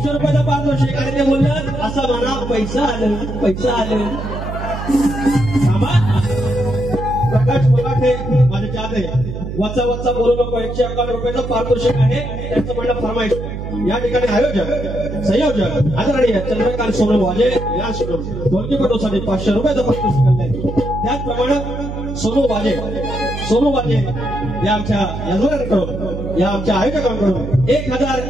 रुपयाचा पारितोषिक आणि ते बोललं असं म्हणा पैसा आलं प्रकाश मराठे माझे चाहते वचा बोलू नको 111 रुपयाचं पारितोषिक आहे त्यांचं म्हणणं फरमाईश या ठिकाणी आयोजक संयोजक आदरणीय चंद्रकांत सोनवाजे या ढोलकीपटूसाठी 500 रुपयाचं पारितोषिक आणलंय त्याचप्रमाणे सोनू वाजे या आमच्या यजमानांकडून या आमच्या आयोजकांकडून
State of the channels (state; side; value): noise; right; hum, 6 dB below the sound